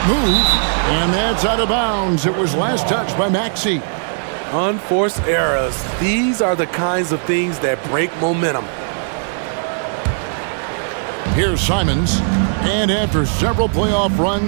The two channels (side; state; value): left; silent; 67 dB below the other